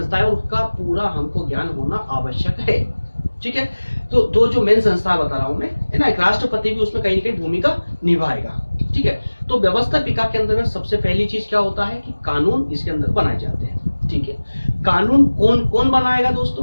उसका पूरा हमको ज्ञान होना आवश्यक है। ठीक है, तो दो जो मेन संस्था बता रहा हूं मैं, है ना, एक राष्ट्रपति भी उसमें कहीं ना कहीं भूमिका निभाएगा। ठीक है, तो व्यवस्थापिका के अंदर सबसे पहली चीज क्या होता है कि कानून इसके अंदर बनाए जाते हैं। ठीक है, कानून कौन कौन बनाएगा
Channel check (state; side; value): inverted; both; correlation -1.00